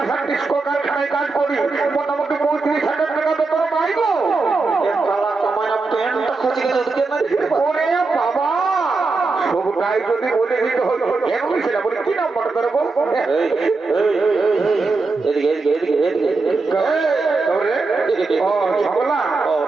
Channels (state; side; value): quieter; left; 3.9 dB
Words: ডিস্কো কারখানায় কাজ করি মোটামুটি 35,000 টাকা বেতন পাইবো প্যান্টটা খসে গেছে ওরে বাবা সবটাই যদি বলে দিতে হলো কেন ছিল বলি কি নাম্বার করবো এদিকে এদিকে এদিকে এদিকে ও ঝগলা